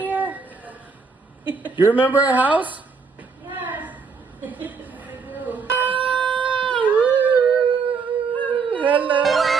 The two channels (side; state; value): left; quieter; 5.1 dB